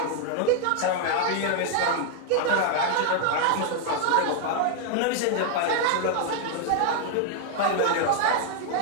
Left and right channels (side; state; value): both; different; correlation 0.00